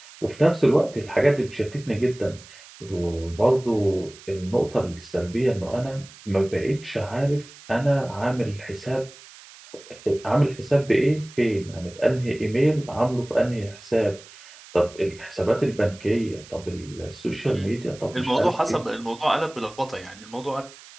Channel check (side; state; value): right; noise; hiss, 20 dB below the sound